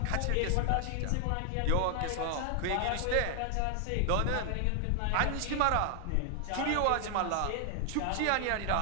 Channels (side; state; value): both; different; correlation 0.00